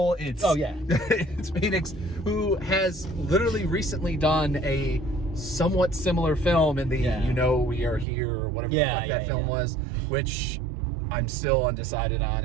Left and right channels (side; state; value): left; drops out; at 8.1 s